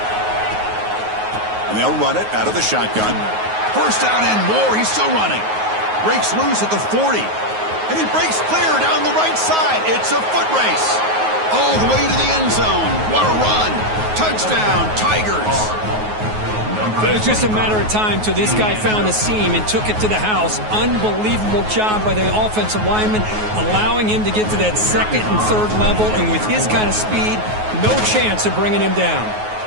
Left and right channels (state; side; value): late; left; 9.4 ms